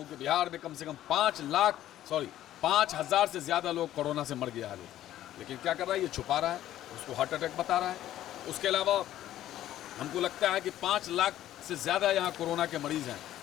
कि बिहार में कम से कम 5,000 से ज़्यादा लोग कोरोना से मर गया है लोग। लेकिन क्या कर रहा है, ये छुपा रहा है, उसको हार्ट अटैक बता रहा है। उसके अलावा हमको लगता है कि 5 लाख से ज़्यादा यहाँ कोरोना के मरीज़ हैं,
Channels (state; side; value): quieter; right; 12.9 dB